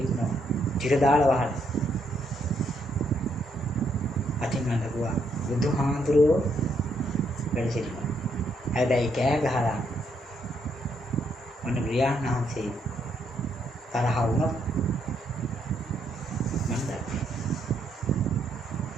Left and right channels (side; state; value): both; normal; correlation 0.74